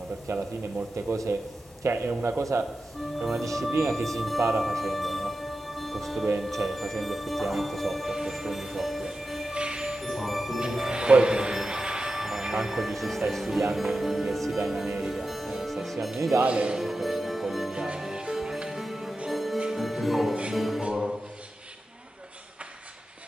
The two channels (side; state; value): both; normal; correlation 0.92